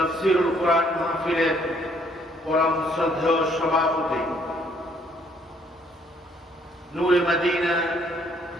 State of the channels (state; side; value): normal; both; correlation 0.65